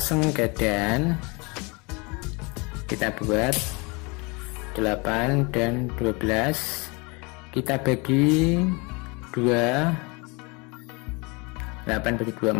kita buat 8 dan 12 kita bagi 2, 8 bagi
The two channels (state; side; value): quieter; right; 28.5 dB